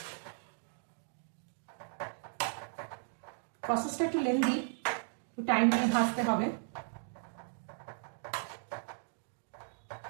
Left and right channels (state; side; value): silent; left; digital silence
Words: প্রসেসটা একটু লেন্দি, একটু টাইম নিয়ে ভাজতে হবে।